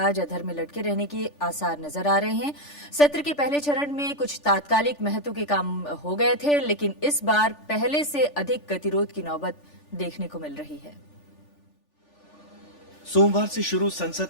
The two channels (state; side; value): late; right; 3.4 ms